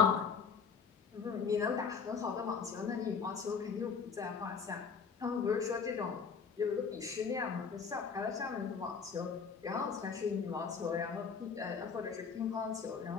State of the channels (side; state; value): right; quieter; 5.9 dB